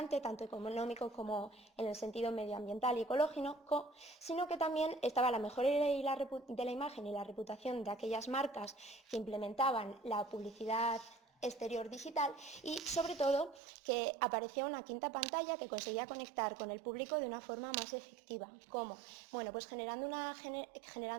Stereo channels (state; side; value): drops out; left; at 13.6 s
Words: tanto económico como en el sentido medioambiental y ecológico, sino que también estaba la mejora de la imagen y la reputación de aquellas marcas que implementaban la publicidad exterior digital, y sobre todo que aparecía una quinta pantalla que conseguía conectar con el público de una forma más efectiva. ¿Cómo? Bueno, pues generando